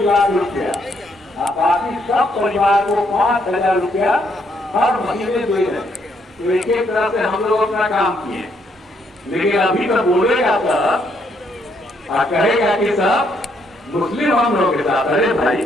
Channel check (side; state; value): both; normal; correlation 0.73